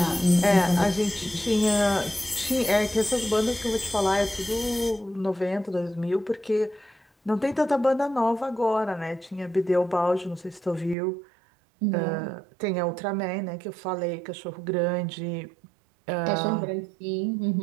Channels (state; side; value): drops out; left; at 11.0 s